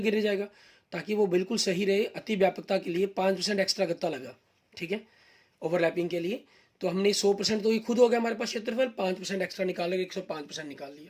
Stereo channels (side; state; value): both; identical; correlation 1.00